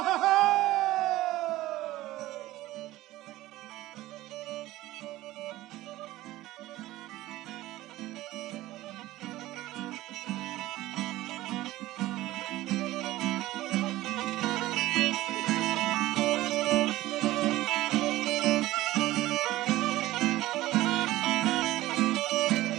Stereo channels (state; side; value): quieter; left; 16.6 dB